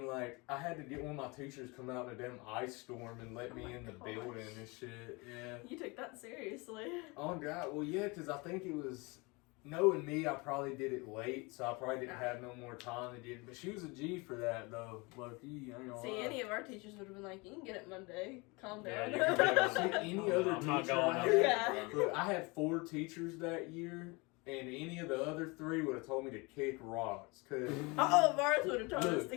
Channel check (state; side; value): quieter; right; 26.7 dB